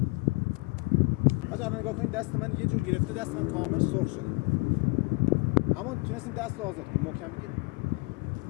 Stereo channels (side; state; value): right; quieter; 27.8 dB